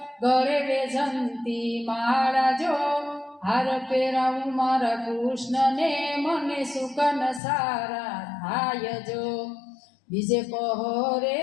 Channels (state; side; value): drops out; right; at 7.4 s